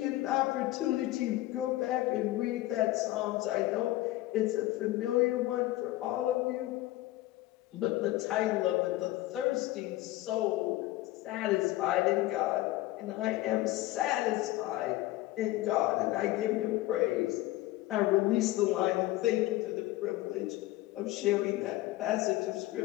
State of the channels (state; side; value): quieter; right; 17.0 dB